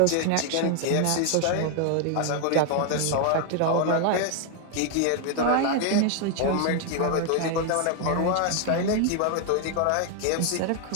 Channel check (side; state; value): both; different; correlation 0.00